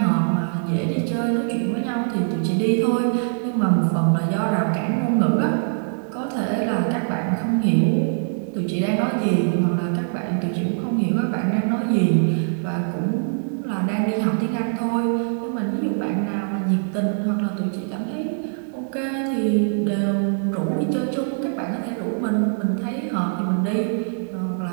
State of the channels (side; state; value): left; silent; digital silence